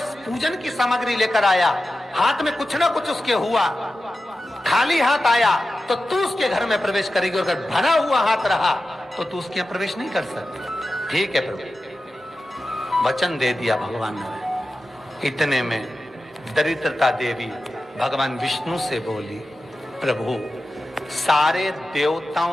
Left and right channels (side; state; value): both; normal; correlation 0.93